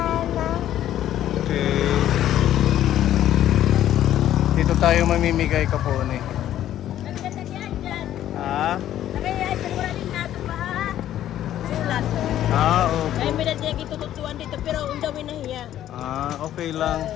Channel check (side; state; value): right; quieter; 12.0 dB